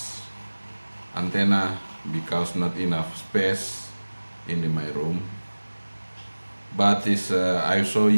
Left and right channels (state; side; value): inverted; both; correlation -1.00